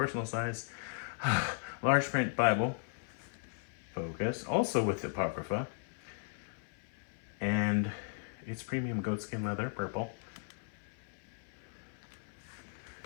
size, large print Bible. Focus, also with Apocrypha. And it's premium goatskin leather, purple.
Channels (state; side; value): silent; right; 53 dB below the other